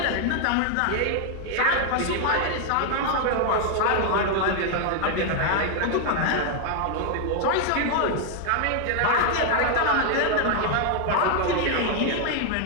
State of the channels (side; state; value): both; different; correlation 0.00